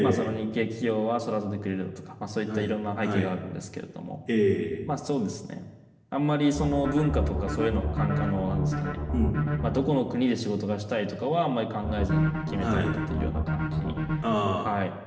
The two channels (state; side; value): identical; both; correlation 1.00